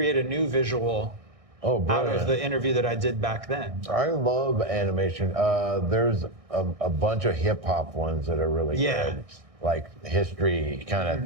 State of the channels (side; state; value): left; late; 1.6 ms